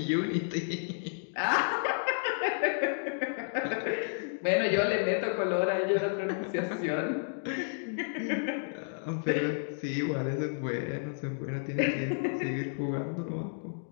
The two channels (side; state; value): right; silent; digital silence